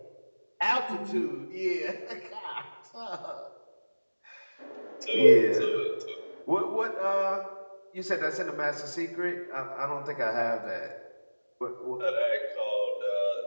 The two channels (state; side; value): inverted; both; correlation -1.00